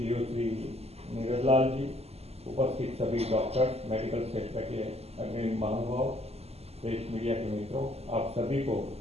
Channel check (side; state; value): left; late; 0.30 ms